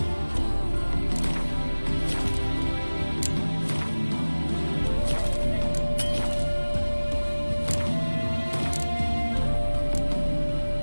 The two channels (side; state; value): both; inverted; correlation -1.00